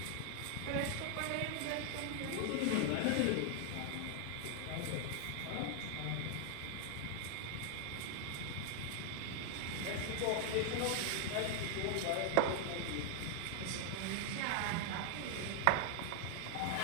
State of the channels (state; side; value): different; both; correlation 0.00